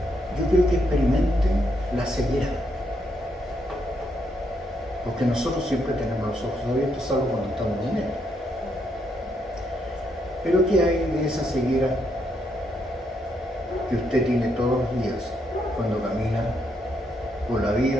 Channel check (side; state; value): both; normal; correlation 0.77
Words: Yo quiero que experimenten la ceguera. Porque nosotros siempre tenemos los ojos abiertos, salvo cuando estamos en él. Pero ¿qué hay de esa ceguera que usted tiene todos los días cuando camina por la